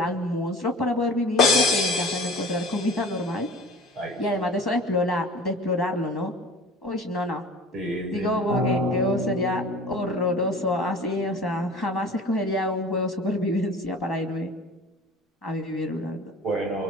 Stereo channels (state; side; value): normal; both; correlation 0.41